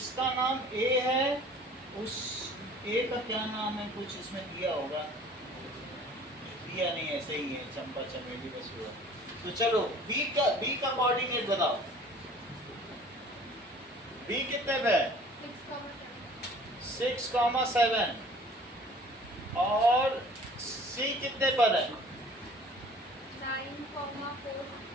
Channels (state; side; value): normal; both; correlation 0.49